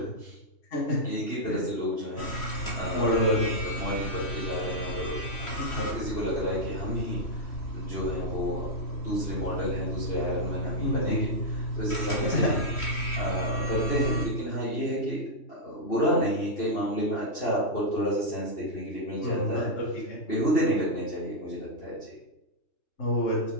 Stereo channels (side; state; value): right; late; 3.1 ms